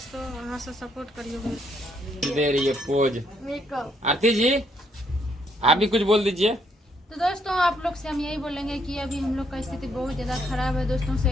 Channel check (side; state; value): both; normal; correlation 0.72